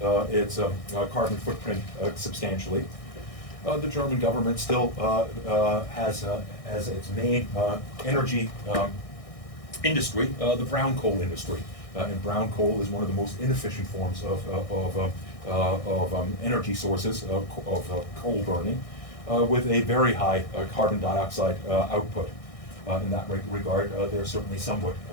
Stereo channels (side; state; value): right; late; 1.6 ms